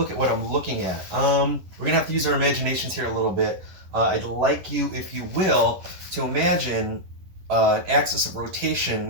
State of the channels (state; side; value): late; left; 11 ms